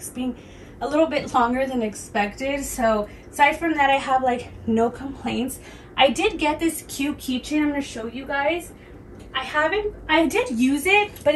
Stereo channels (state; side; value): identical; both; correlation 1.00